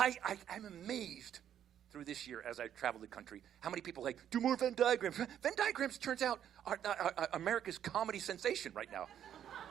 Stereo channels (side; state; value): left; quieter; 9.9 dB